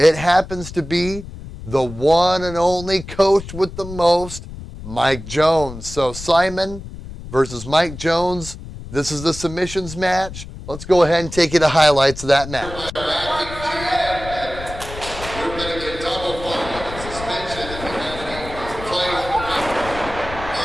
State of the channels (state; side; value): noise; left; rumble, 12 dB below the sound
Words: happens to be the one and only coach with the most, Mike Jones. So Simon versus Mike Jones. This is the submissions match. Let's go ahead and take you to highlights of that match.